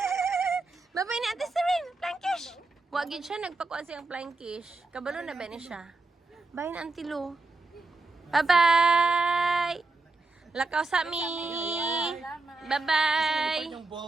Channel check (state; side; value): quieter; left; 3.4 dB